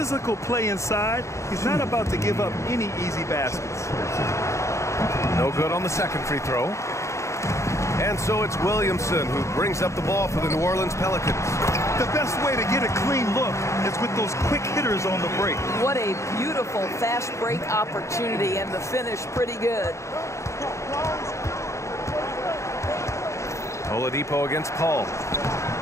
play inside. He's not about to give up any easy baskets. No good on the second free throw. And so it's Williamson who brings up the ball for the New Orleans Pelicans. The best way to get a clean look is with those quick hitters on the break. What a beautiful fast break opportunity, and the finish pretty good. Oladipo against Paul.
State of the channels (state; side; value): late; right; 0.14 ms